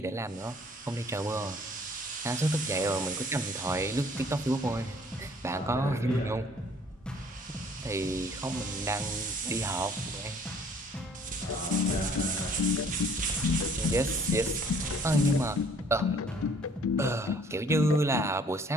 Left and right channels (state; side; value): normal; both; correlation 0.57